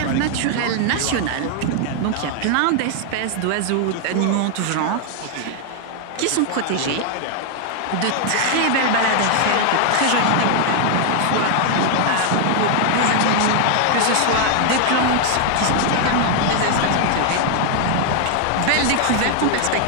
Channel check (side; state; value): both; different; correlation 0.00